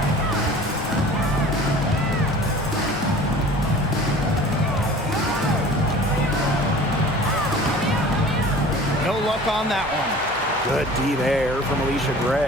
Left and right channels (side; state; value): left; noise; hum, 23 dB below the sound